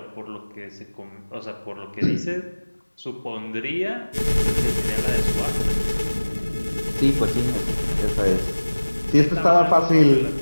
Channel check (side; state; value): both; inverted; correlation -1.00